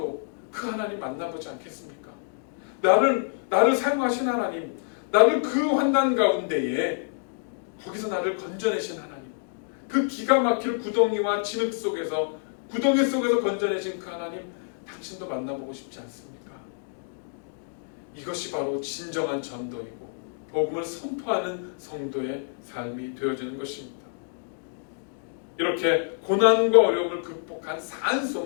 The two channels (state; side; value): silent; right; digital silence